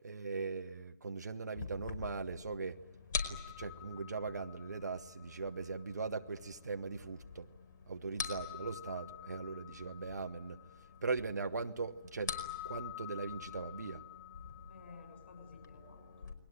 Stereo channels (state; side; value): inverted; both; correlation -0.60